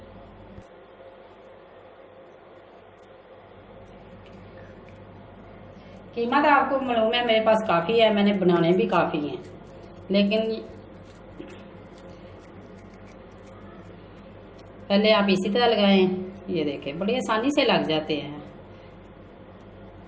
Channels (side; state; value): both; identical; correlation 1.00